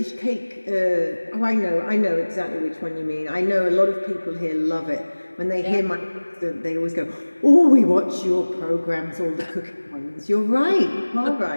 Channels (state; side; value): inverted; both; correlation -1.00